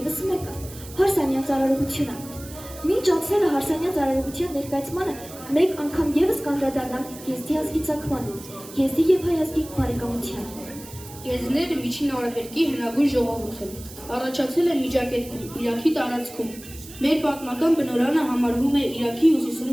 մեկը՝ հարսանյա ծառայողությունը։ Մինչ անցնելը հարսանյա ծառայողության ներկայացմանը մեկ անգամ ևս կանդրադառնանք GST ազգի ծագմանը, GST և հայ ազգի բարեկամությանը։ Եզիները միջին արևելքի հնագույն ժողովուրդ են, առաջացել են Միջագետքում, Իրաքի տարածքում։ Մեր պատմական բնօրրանը համարվում է Իրաքի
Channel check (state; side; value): noise; right; hiss, 17 dB below the sound